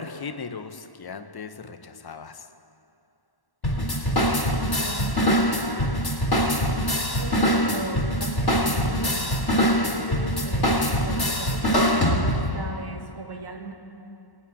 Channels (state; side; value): late; right; 1.1 ms